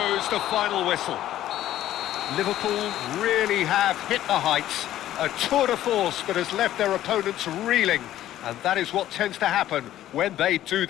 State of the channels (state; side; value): quieter; right; 13.0 dB